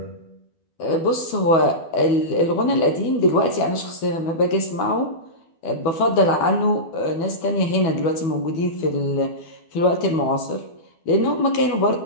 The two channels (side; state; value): right; late; 12 ms